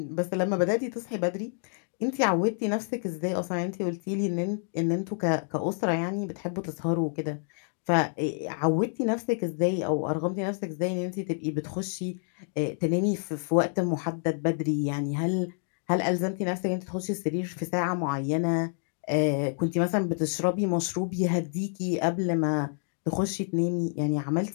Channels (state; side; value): silent; right; digital silence